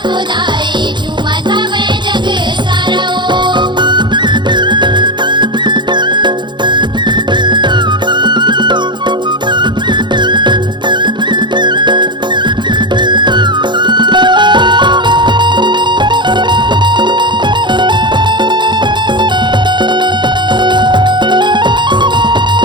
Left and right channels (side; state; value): left; late; 0.22 ms